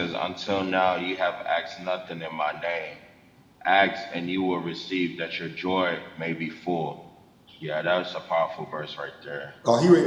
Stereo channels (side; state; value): both; identical; correlation 1.00